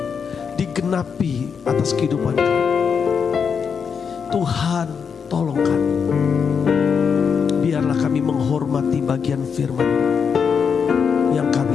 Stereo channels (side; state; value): right; quieter; 6.4 dB